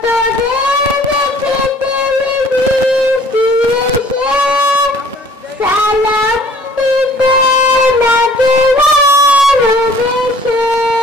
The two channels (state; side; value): normal; both; correlation 0.54